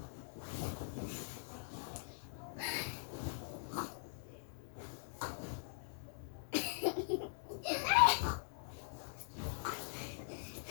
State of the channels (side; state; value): right; silent; digital silence